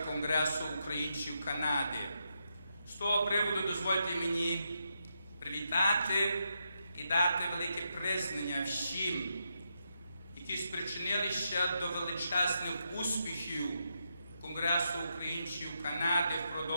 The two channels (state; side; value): inverted; both; correlation -0.82